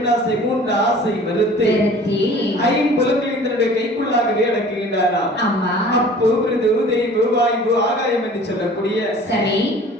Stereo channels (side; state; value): both; normal; correlation 0.47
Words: மூன்று ஆசை மறுத்து ஐம்புலன்களின் தன்னுடைய கைக்குள்ளாகவே அடக்குகின்றானா. அப்பு, மிருது, தெய்வு, வாயு, ஆகாயம் என்று சொல்லக்கூடிய